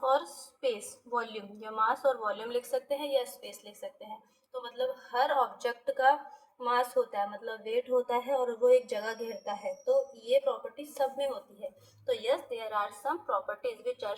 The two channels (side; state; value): both; identical; correlation 1.00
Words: और स्पेस वॉल्यूम, या मास और वॉल्यूम लिख सकते हैं या स्पेस लिख सकते हैं। तो मतलब हर ऑब्जेक्ट का मास होता है, मतलब वेट होता है, और वो एक जगह घेरता है। तो ये प्रॉपर्टी सब में होती है। तो yes, there are some properties which are